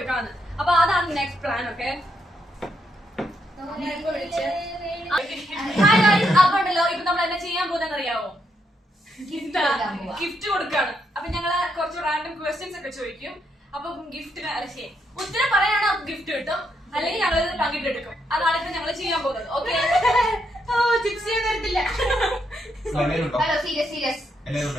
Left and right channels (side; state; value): both; normal; correlation 0.78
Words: അപ്പൊ അതാണ് നെക്സ്റ്റ് പ്ലാൻ. ഓക്കെ അപ്പൊ ഉണ്ടല്ലോ ഇപ്പൊ നമ്മൾ എന്നാ ചെയ്യാൻ പോകുന്നതെന്ന് അറിയാവോ? ഗിഫ്റ്റ് കൊടുക്കാണ്. അപ്പൊ ഞങ്ങള് കുറച്ച് റാൻഡം ക്വസ്റ്റ്യൻസ് ഒക്കെ ചോദിക്കും. അപ്പൊ ഗിഫ്റ്റിന് ഉത്തരം പറയാണോ ഗിഫ്റ്റ് കിട്ടും, അല്ലെങ്കിൽ ഞങ്ങൾ പങ്കിട്ടെടുക്കും. അതാണ് ഇപ്പൊ ഞങ്ങൾ ചെയ്യാൻ പോകുന്നത്. ഓക്കെ ചിപ്സ് ചെയ്യാൻ തരത്തില്ല. ഹലോ സീരിയസ്